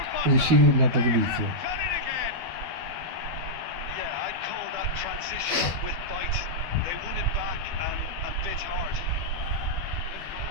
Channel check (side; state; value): left; late; 12 ms